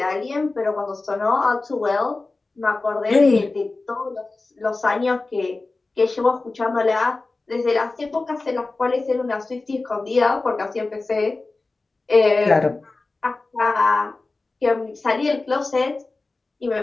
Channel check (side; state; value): right; quieter; 3.5 dB